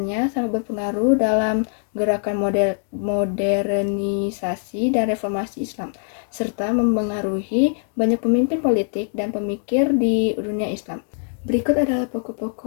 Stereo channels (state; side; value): silent; right; 59 dB below the other